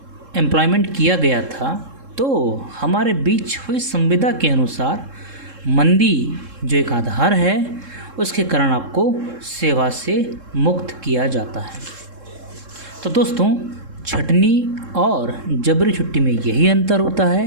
एम्प्लॉयमेंट किया गया था तो हमारे बीच हुई संविदा के अनुसार मंदी जो एक आधार है उसके कारण आपको सेवा से मुक्त किया जाता है। तो दोस्तों, छटनी और जबरी छुट्टी में यही अंतर होता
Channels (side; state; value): left; late; 3.7 ms